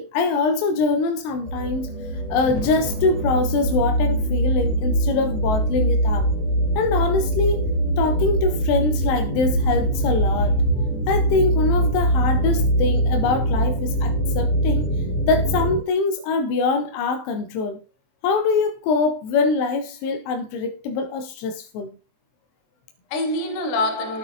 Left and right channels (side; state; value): right; late; 23 ms